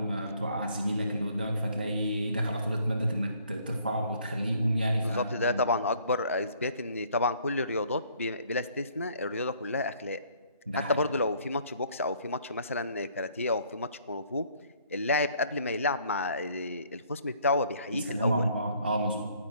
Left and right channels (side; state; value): both; inverted; correlation -0.61